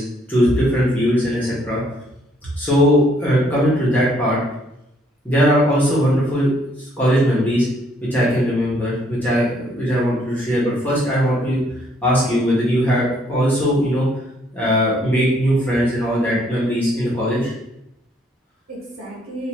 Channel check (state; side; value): normal; both; correlation 0.67